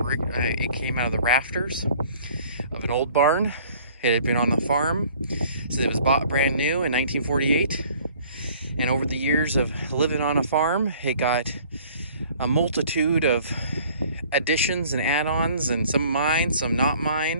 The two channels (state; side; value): inverted; both; correlation -0.53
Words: came out of the rafters of an old barn. It had been on the farm, so it was bought brand new in 1948. And over the years of living on a farm, it got a multitude of additions and add-ons, and some mine, some not